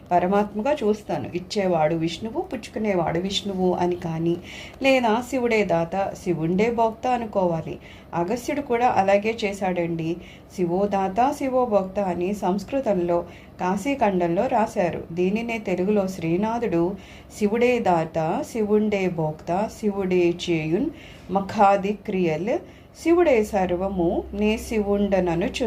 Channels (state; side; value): identical; both; correlation 1.00